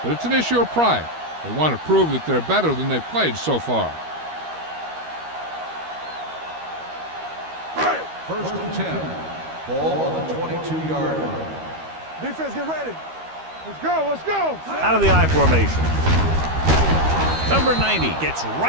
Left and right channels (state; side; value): late; left; 13 ms